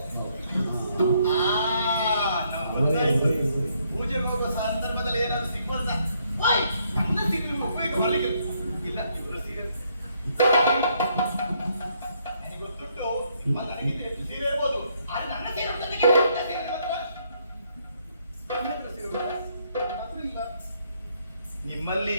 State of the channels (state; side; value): inverted; both; correlation -0.71